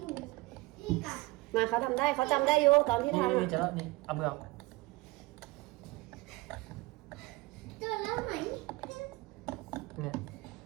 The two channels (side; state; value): left; quieter; 21.9 dB